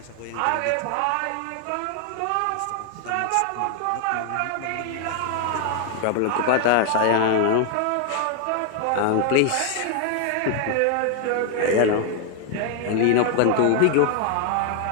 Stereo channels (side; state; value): both; different; correlation 0.00